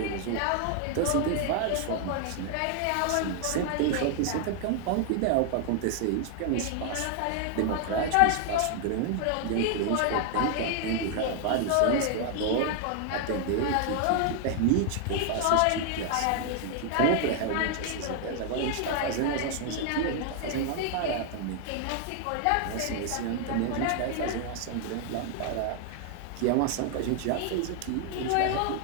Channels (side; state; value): both; different; correlation 0.00